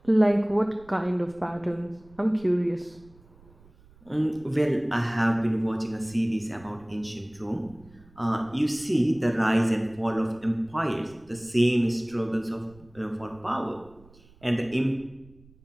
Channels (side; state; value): right; noise; rumble, 26 dB below the sound